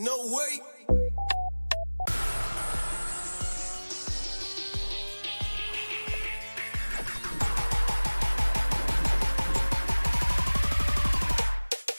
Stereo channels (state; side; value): inverted; both; correlation -1.00